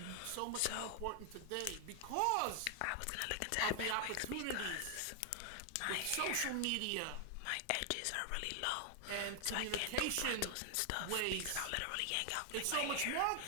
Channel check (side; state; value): both; different; correlation 0.00